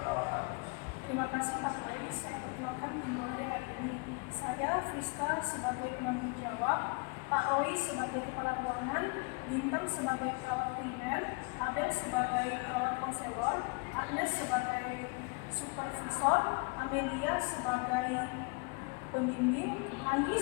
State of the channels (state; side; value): quieter; right; 31.1 dB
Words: perawatan. Terima kasih Pak Roy, saya perkenalkan tim ronde hari ini. Saya Friska sebagai penanggung jawab, Pak Roy sebagai kepala ruangan, Bintang sebagai perawat primer, Abel sebagai perawat konselor, Agnes sebagai supervisor, Amelia sebagai pembimbing, Anggi